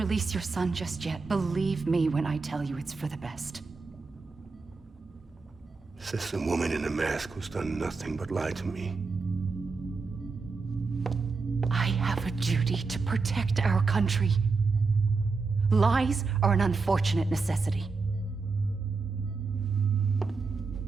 your son just yet. Believe me when I tell you it's for the best. This is a woman in a mask who's done nothing but lie to me. I have a duty to protect our country. Lies are an unfortunate necessity.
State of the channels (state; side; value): quieter; left; 4.3 dB